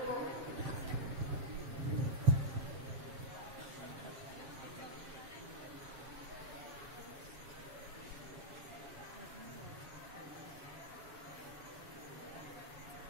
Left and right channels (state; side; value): late; left; 7.3 ms